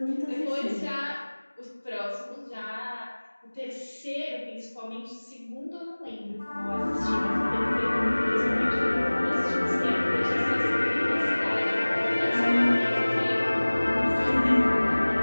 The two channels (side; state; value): both; inverted; correlation -1.00